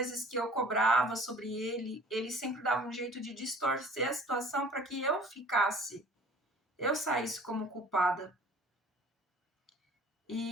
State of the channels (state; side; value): normal; both; correlation 0.48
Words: que eu cobrava sobre ele, ele sempre dava um jeito de distorcer a situação para que eu saísse como culpada.